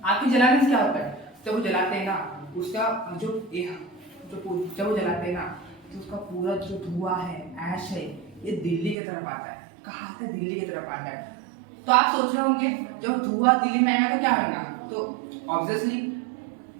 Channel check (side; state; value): left; drops out; at 9.0 s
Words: आपके जलाने से क्या होता है, जब वो जलाते हैं ना, उसका जो जब वो जलाते हैं ना, तो उसका पूरा जो धुआं है, ऐश है, ये दिल्ली की तरफ आता है। कहाँ आता है, दिल्ली की तरफ आता है। तो आप सोच रहे होंगे जब धुआं दिल्ली में आएगा तो क्या होगा, तो ऑब्वियसली